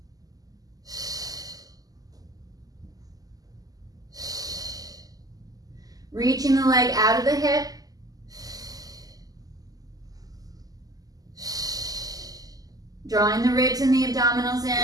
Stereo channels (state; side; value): late; left; 0.17 ms